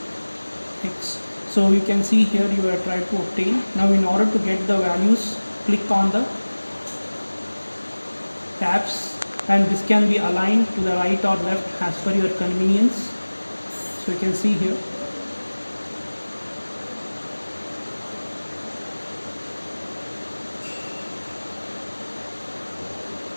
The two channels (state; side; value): inverted; both; correlation -1.00